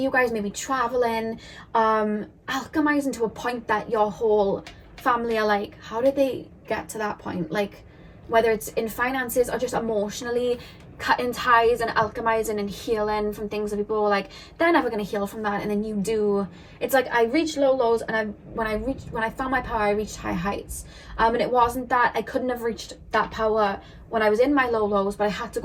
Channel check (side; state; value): both; identical; correlation 1.00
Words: you guys maybe traveling, alchemizing to a point that your whole family are like, how did they get to that point? Like, whether it's in finances or just emotionally, cutting ties and alchemizing and healing from things that people were like, they're never going to heal from that, and then you do. It's like I reached low lows, and when I found my power, I reached high heights. And it wasn't that I couldn't have reached that power when I was in my low lows, but I had to